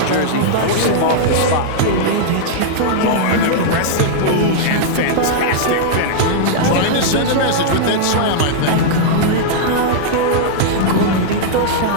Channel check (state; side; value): different; both; correlation -0.02